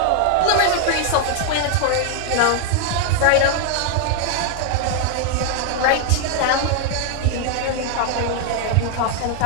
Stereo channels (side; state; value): both; different; correlation 0.00